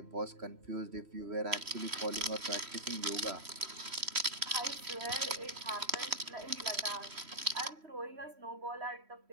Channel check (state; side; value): late; left; 3.1 ms